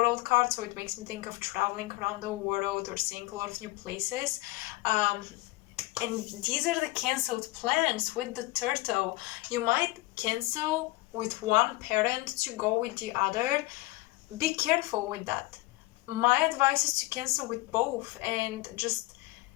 card, so it makes me think of traveling around the world or seeing a lot of new places. And these are the canceled plans with the turtle. You might cancel with one parent to go with the other. Be careful with that. My advice is to cancel with both and just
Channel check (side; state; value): right; quieter; 20.4 dB